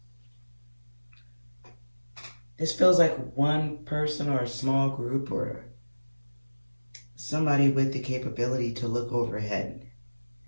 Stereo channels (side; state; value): both; inverted; correlation -1.00